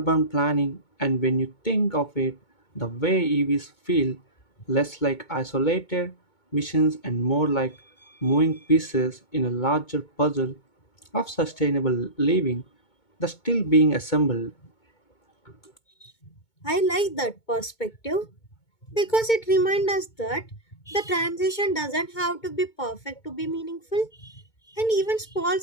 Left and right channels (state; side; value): late; right; 2.2 ms